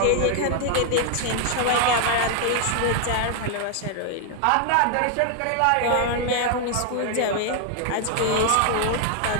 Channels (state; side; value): different; both; correlation 0.00